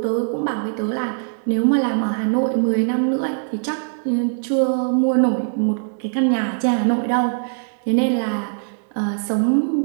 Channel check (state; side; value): silent; left; digital silence